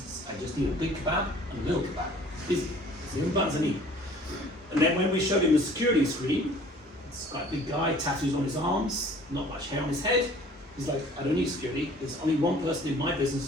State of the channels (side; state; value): both; normal; correlation 0.51